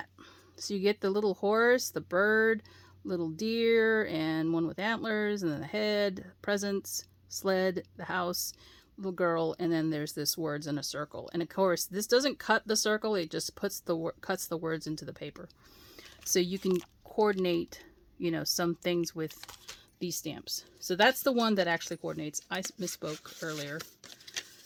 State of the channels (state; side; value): identical; both; correlation 1.00